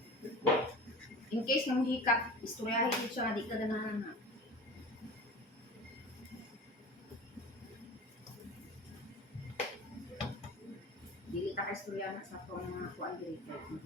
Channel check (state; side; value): normal; both; correlation 0.36